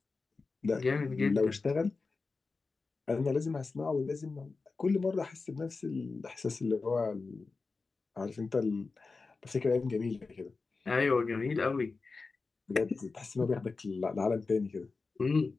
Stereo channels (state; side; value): quieter; right; 4.1 dB